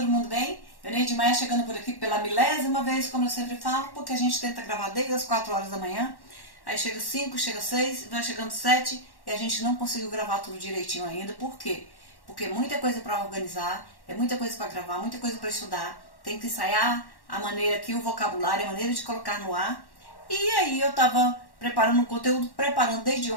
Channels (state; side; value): late; right; 1.1 ms